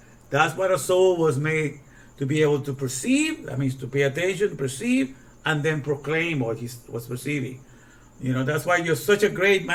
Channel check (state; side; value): identical; both; correlation 1.00